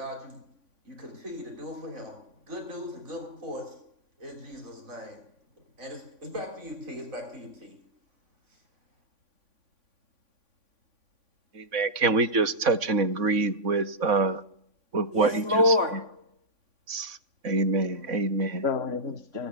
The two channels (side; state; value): left; late; 3.5 ms